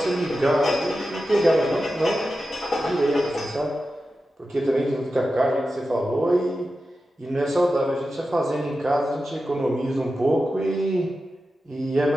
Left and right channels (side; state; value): both; normal; correlation 0.92